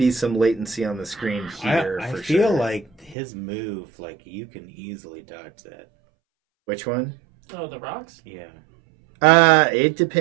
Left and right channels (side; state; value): left; drops out; at 3.2 s